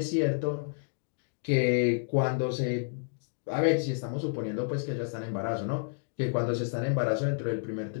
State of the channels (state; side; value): silent; right; digital silence